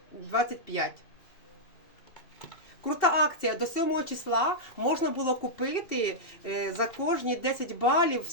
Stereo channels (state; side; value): late; right; 2.7 ms